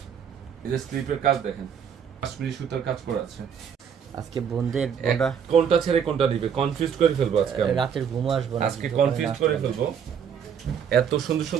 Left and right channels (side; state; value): left; quieter; 7.7 dB